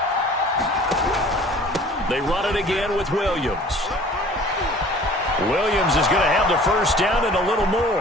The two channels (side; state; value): both; normal; correlation 0.48